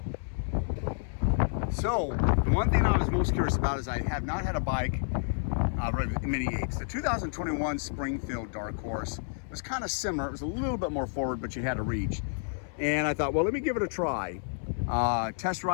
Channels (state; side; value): silent; right; 58 dB below the other